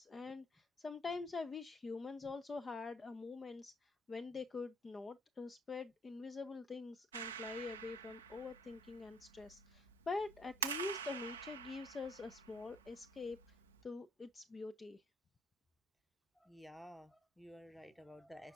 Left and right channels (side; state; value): both; normal; correlation 0.61